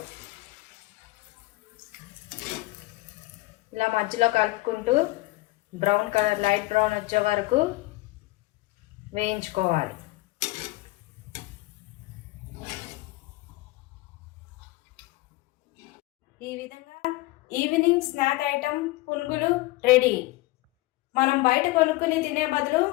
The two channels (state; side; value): quieter; right; 20.2 dB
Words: ఇలా మధ్యలో కలుపుకుంటూ బ్రౌన్ కలర్, లైట్ బ్రౌన్ వచ్చే వరకు వేయించుకోవాలి. ఈ విధంగా ఈవినింగ్ స్నాక్ ఐటమ్ పునుగులు రెడీ. మనం బయట కొనుక్కుని తినే బదులు